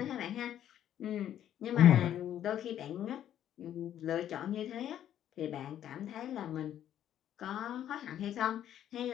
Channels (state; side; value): quieter; right; 10.9 dB